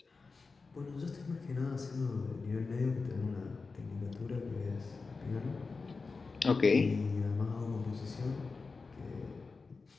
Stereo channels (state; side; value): quieter; right; 4.3 dB